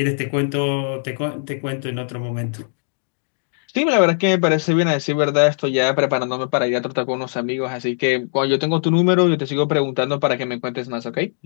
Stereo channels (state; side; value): silent; right; digital silence